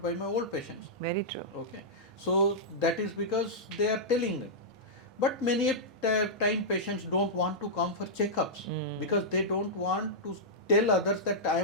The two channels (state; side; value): normal; both; correlation -0.11